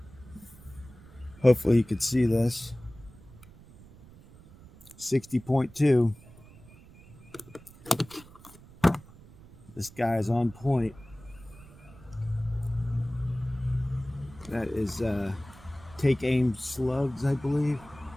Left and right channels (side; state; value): right; noise; rumble, 21 dB below the sound